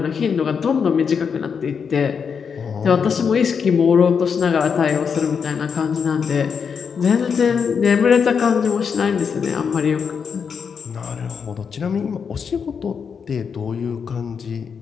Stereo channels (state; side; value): quieter; right; 6.4 dB